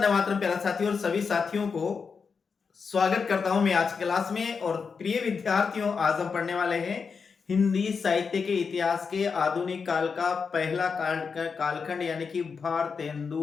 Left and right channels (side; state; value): right; quieter; 5.5 dB